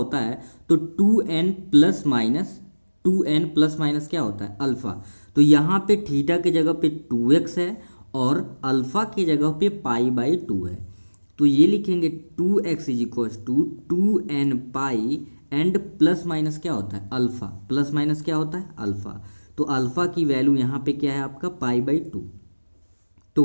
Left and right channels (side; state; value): both; inverted; correlation -1.00